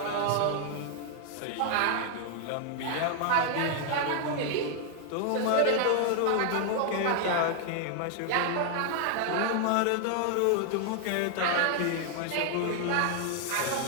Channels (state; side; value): different; both; correlation 0.00